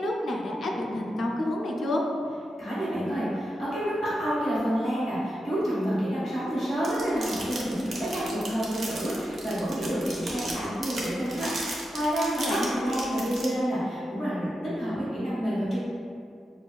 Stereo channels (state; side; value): normal; both; correlation 0.88